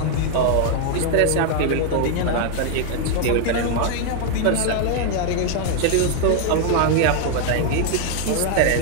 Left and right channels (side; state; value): both; different; correlation 0.00